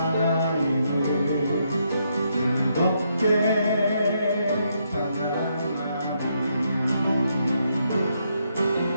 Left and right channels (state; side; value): inverted; both; correlation -0.77